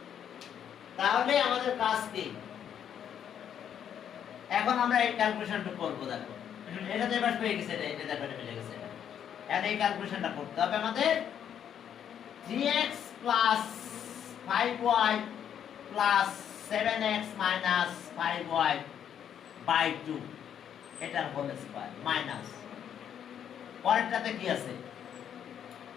তাহলে আমাদের কাজ কি, এখন আমরা এই ক্যালকুলেশনটা করব। দেখো এটা তো এবার পেয়ে গেছে, এটা দেখো এটা মিলে গেছে, এখন এই ক্যালকুলেশনটা করতে হবে আমাদের। 3x plus 5y plus 7x minus 5y by 2 এটার হোল স্কয়ার মাইনাস পরেরটাতে কি আছে,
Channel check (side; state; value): right; quieter; 9.0 dB